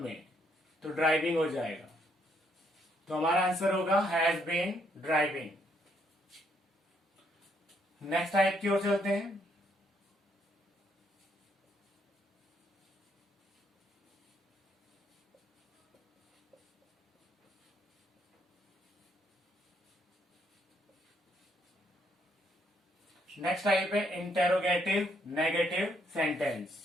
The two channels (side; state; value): both; normal; correlation 0.72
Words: में, तो ड्राइविंग हो जाएगा। तो हमारा आंसर होगा has been driving. Next type की ओर चलते हैं। नेक्स्ट टाइप है इंटेरोगेटिव नेगेटिव सेंटेंस।